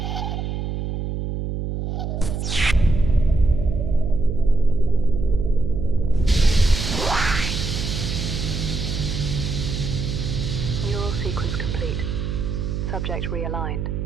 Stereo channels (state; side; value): noise; right; hum, 3 dB below the sound